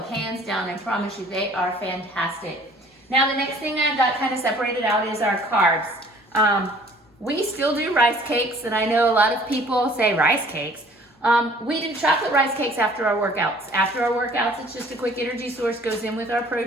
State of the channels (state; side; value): normal; both; correlation 0.53